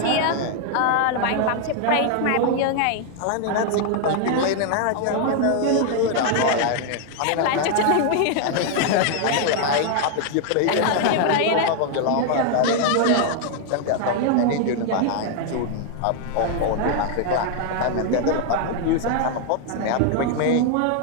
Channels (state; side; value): different; both; correlation 0.00